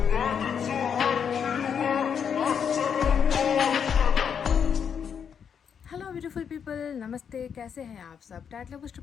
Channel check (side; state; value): right; quieter; 7.4 dB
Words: हेलो ब्यूटीफुल पीपल, नमस्ते। कैसे हैं आप सब? टाइटल बुक